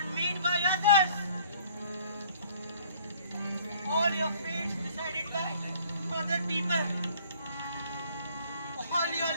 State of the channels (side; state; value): both; inverted; correlation -0.56